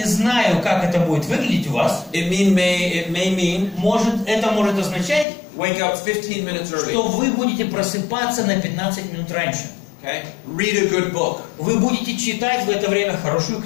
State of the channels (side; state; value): right; drops out; at 5.2 s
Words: знаю, как это будет выглядеть у вас. It may mean Это может означать, wake up 15 minutes early. что вы будете просыпаться на 15 минут раньше. Okay? Read a good book. Вы будете читать в это время хорошую